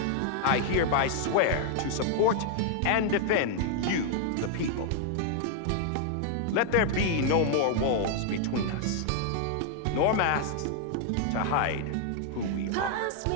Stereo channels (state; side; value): different; both; correlation 0.00